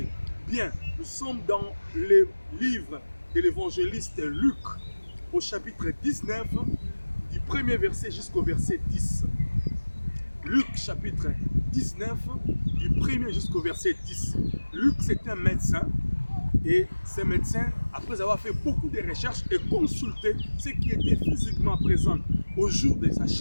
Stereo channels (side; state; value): both; inverted; correlation -1.00